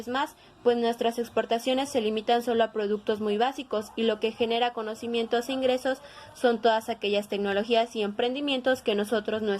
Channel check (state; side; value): identical; both; correlation 1.00